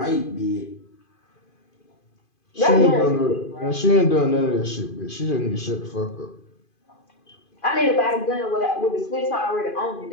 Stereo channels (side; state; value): right; late; 2.5 ms